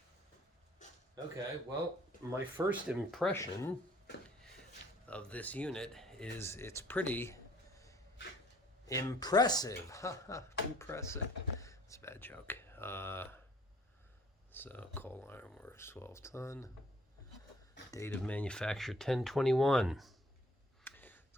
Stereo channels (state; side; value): normal; both; correlation 0.57